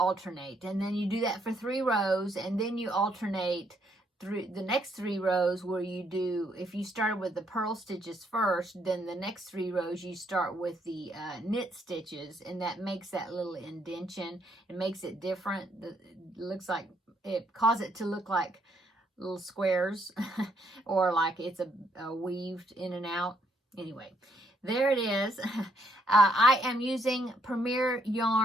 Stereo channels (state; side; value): normal; both; correlation 0.72